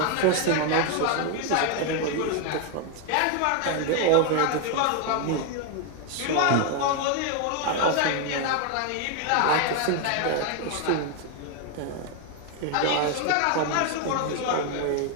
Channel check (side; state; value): both; different; correlation 0.01